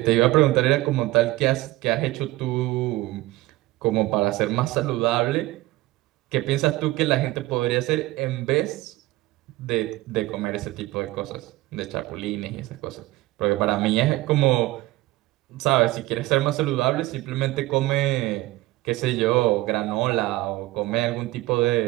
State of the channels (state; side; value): quieter; left; 18.5 dB